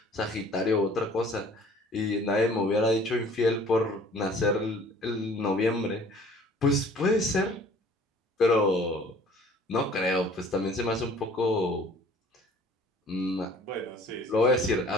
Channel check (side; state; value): both; normal; correlation 0.52